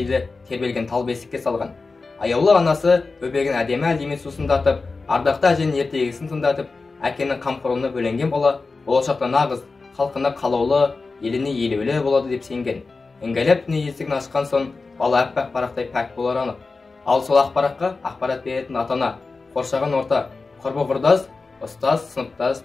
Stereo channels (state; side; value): quieter; right; 4.0 dB